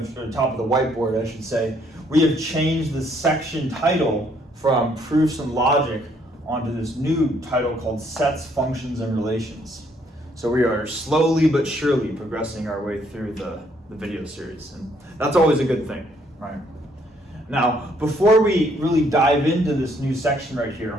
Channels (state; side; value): normal; both; correlation 0.68